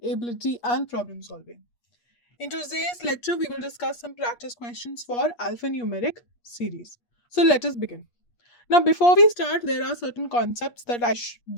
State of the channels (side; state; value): right; late; 8.4 ms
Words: ability and problem solving. In today's lecture, we will discuss some practice questions for alphanumeric series. So let us begin. Now before we start, there are certain concepts